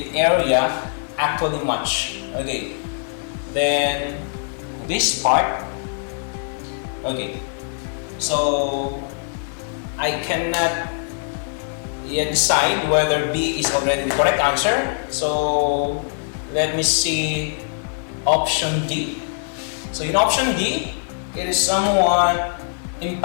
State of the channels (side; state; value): right; silent; digital silence